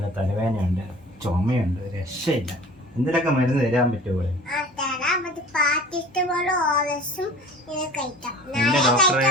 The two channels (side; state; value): both; normal; correlation 0.43